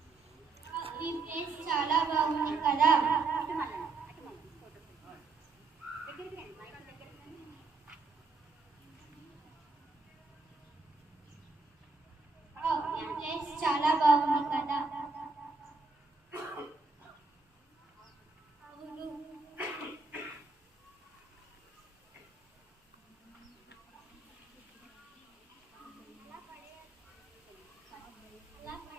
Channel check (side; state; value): left; quieter; 4.0 dB